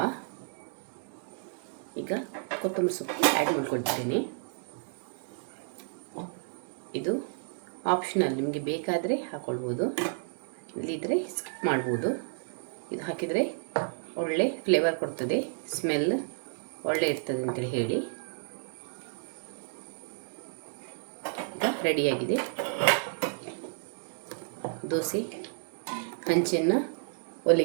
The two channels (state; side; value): silent; left; digital silence